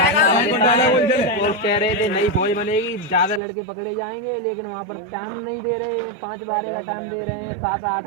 और कह रहे थे नई फौज बनेगी, ज्यादा लड़के पकड़े जाएंगे, लेकिन वहाँ पर टाइम नहीं दे रहे हैं, 5-12 का टाइम दे रहे हैं, 7-8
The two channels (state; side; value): drops out; left; at 3.4 s